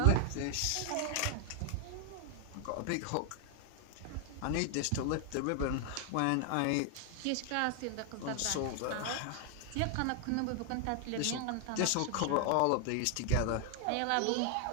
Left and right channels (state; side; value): different; both; correlation 0.00